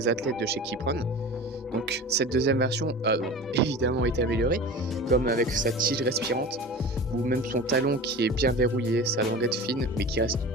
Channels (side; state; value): both; normal; correlation 0.34